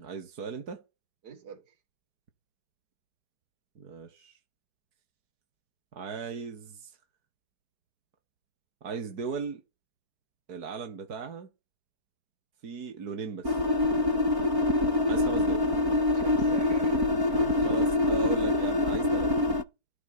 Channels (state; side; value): late; left; 4.4 ms